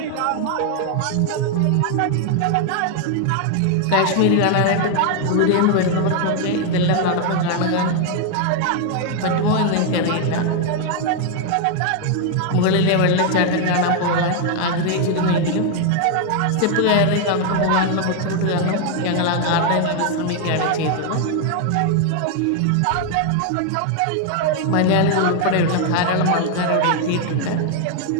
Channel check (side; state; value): both; different; correlation 0.00